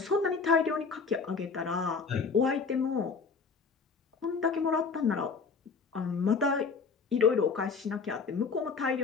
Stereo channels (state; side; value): quieter; right; 5.0 dB